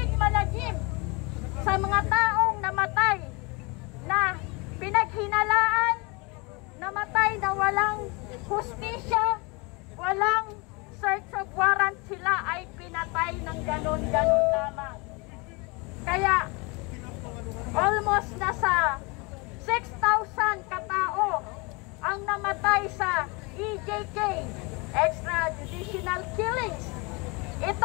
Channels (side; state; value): right; quieter; 28.3 dB